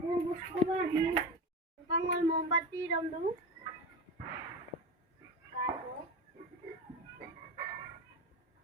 Pangol mombatti ramdu.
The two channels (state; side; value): normal; both; correlation 0.23